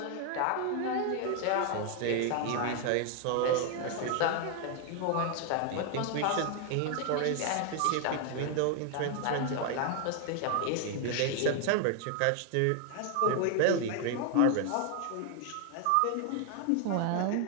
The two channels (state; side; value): different; both; correlation 0.00